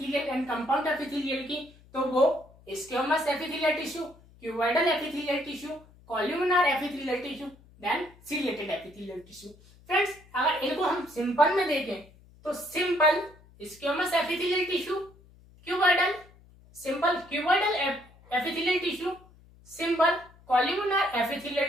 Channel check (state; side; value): noise; left; hum, 26 dB below the sound